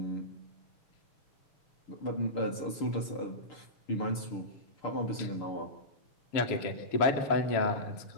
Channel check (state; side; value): late; right; 6.8 ms